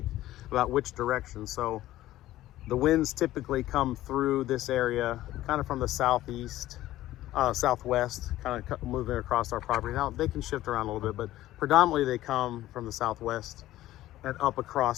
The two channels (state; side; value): quieter; right; 15.0 dB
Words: about which direction. So the winds typically come through this area kind of from the southeast, southwest, kind of moving across our property. Now they can shift around a little bit, but predominantly they come from the southwest and up